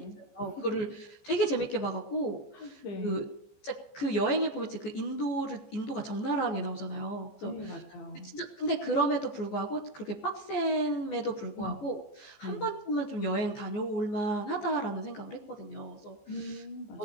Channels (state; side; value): late; right; 14 ms